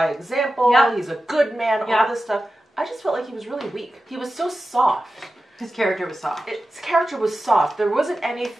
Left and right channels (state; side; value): normal; both; correlation 0.93